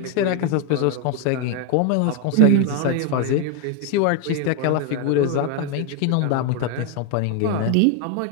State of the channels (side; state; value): both; different; correlation 0.01